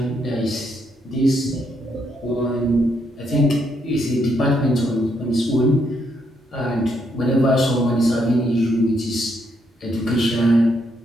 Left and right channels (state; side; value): normal; both; correlation 0.76